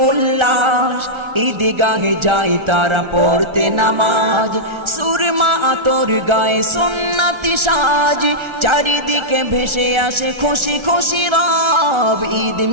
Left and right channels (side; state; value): left; late; 1.4 ms